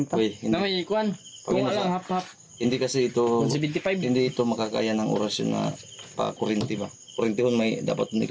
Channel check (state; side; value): identical; both; correlation 1.00